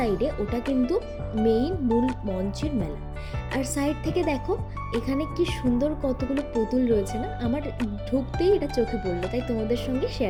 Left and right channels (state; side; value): identical; both; correlation 1.00